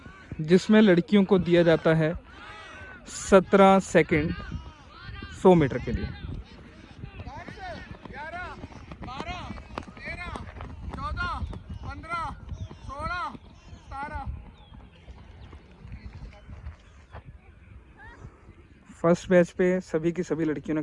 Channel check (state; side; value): identical; both; correlation 1.00